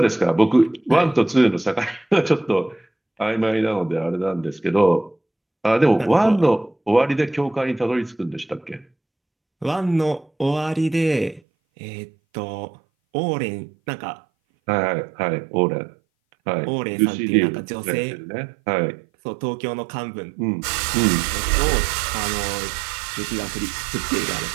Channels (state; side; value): drops out; left; at 11.4 s